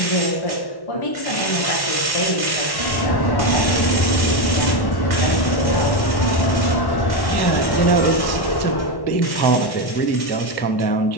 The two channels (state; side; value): late; right; 1.1 ms